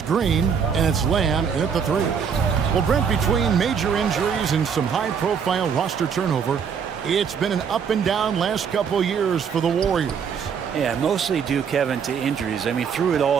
Green. And it's Lamb in at the 3. Well, Brent, between major injuries and some high-profile roster turnover, it's been an up and down last couple years for the Warriors. Yeah, mostly due, Kevin, to injuries. I mean, through it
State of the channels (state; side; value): quieter; left; 6.9 dB